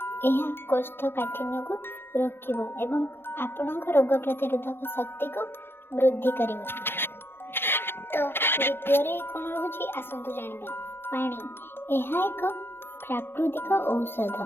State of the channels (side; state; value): right; late; 0.11 ms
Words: ଏହା କୋଷ୍ଠକାଠିନ୍ୟକୁ ରୋକିବ ଏବଂ ଆପଣଙ୍କ ରୋଗ ପ୍ରତିରୋଧକ ଶକ୍ତିକୁ ବୃଦ୍ଧି କରିବ। ତ ଦ୍ୱିତୀୟରେ କ'ଣ ରହୁଛି ଆସନ୍ତୁ ଜାଣିବା। ପାଣି, ଏହା ଏକ ପ୍ରାକୃତିକ ଔଷଧ।